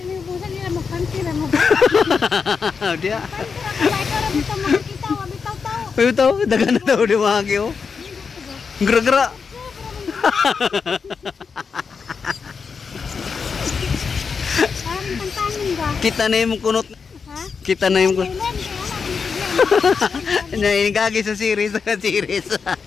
ni busan nila magpantira mo. Dia. Kita Bitaw, dagan na daw di mahagi oh. Gra-gra. Kita na yung kunot. Kita na yung kunot. Nainigagi sa series.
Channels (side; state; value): right; quieter; 5.6 dB